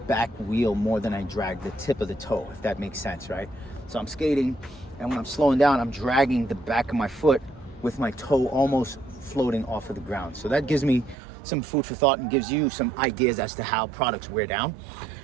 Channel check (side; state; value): left; drops out; at 11.2 s